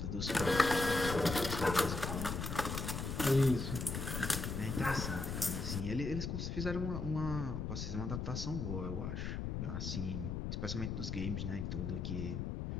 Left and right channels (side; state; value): left; noise; rumble, 3 dB below the sound